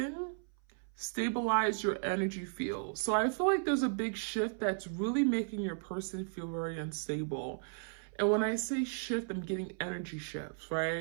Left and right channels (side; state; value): left; silent; 54 dB below the other